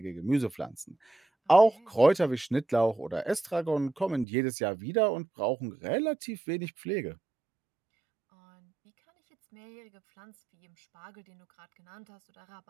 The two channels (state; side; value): drops out; left; at 4.2 s